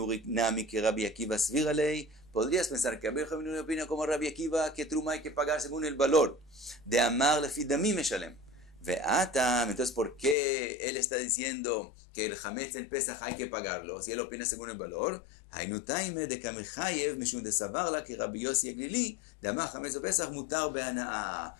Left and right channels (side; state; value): right; drops out; at 10.4 s